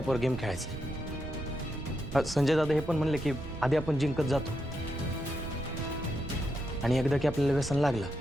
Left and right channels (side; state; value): right; noise; rumble, 11 dB below the sound